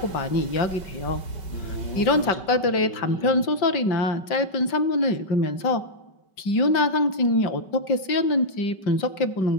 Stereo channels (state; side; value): late; right; 5.3 ms